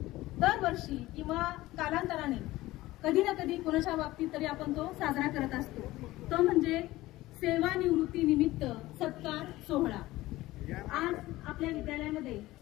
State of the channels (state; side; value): quieter; right; 17.6 dB